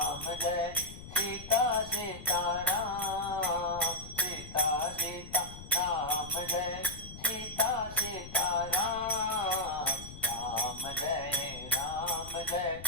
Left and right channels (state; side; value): noise; left; rumble, 13 dB below the sound